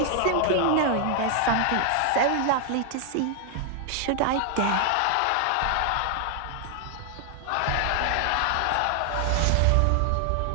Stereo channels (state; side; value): different; both; correlation 0.00